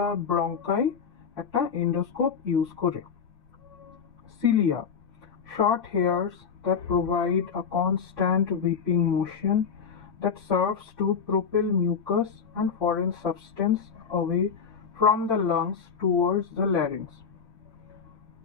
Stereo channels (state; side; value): quieter; right; 6.4 dB